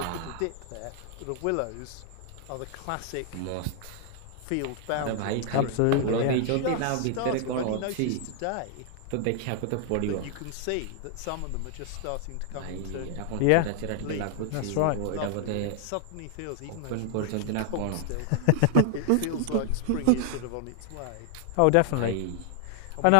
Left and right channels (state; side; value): different; both; correlation 0.00